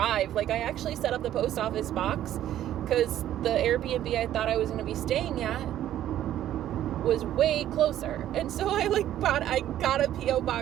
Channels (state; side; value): quieter; left; 12.1 dB